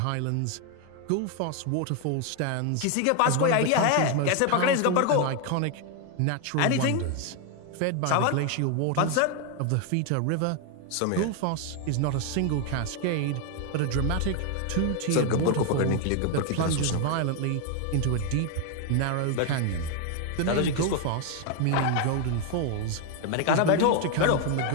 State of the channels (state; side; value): different; both; correlation 0.01